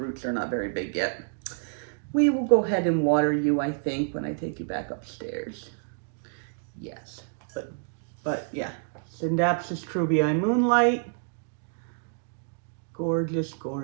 are not very big yet. We will go ahead and water you, I think, when I take you back upstairs. Yes, but yeah, Syngonium Moonlight. Gorgeous,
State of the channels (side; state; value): left; silent; digital silence